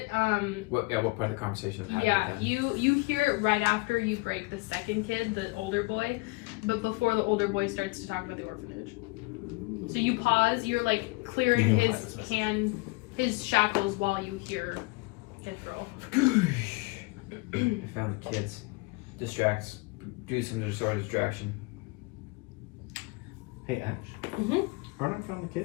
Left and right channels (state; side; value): quieter; right; 26.3 dB